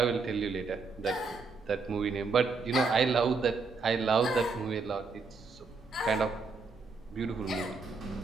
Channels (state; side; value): quieter; left; 4.3 dB